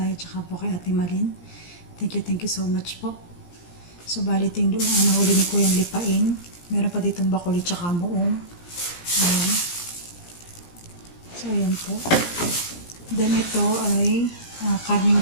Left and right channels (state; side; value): late; right; 17 ms